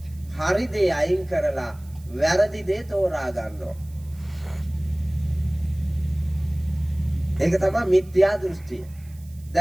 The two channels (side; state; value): right; noise; hiss, 27 dB below the sound